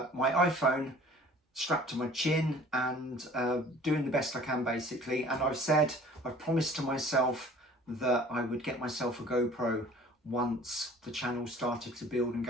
iPhone strapped to my chin and doing the best I can basically. And I've promised to myself that I would get myself a GoPro once the channel started to build and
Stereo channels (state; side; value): normal; both; correlation 0.49